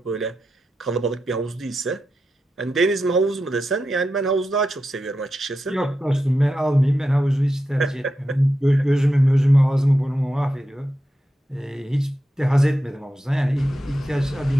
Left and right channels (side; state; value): both; normal; correlation 0.89